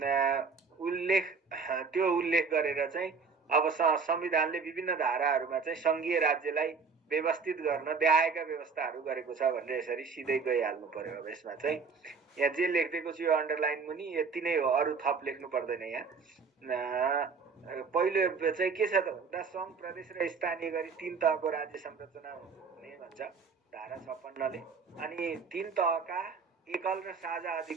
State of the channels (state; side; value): quieter; left; 5.1 dB